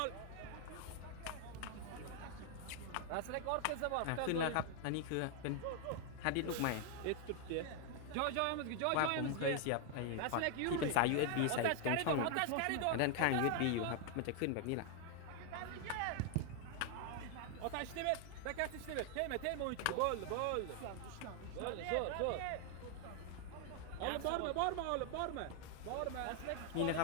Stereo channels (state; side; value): different; both; correlation 0.00